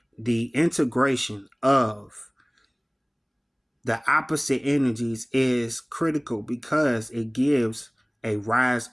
integration of the opposite energies is critical because it gives a rise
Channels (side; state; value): both; identical; correlation 1.00